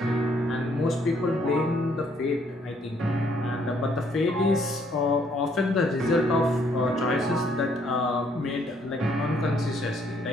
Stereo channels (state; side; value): normal; both; correlation 0.67